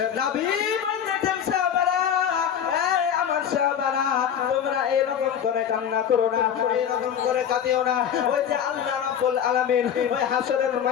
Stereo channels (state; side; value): quieter; right; 8.7 dB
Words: নবী বলতেছেন, সাহাবারা, এই আমার সাহাবারা, তোমরা এরকম করে কান্না করো না, এরকম করে কাঁদিও না। ওই যে আল্লাহ রাব্বুল আলামিন ওই হাসরের